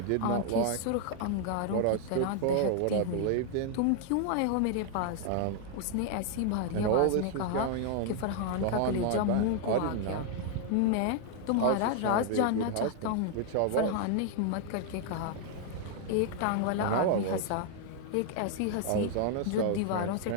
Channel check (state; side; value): different; both; correlation 0.00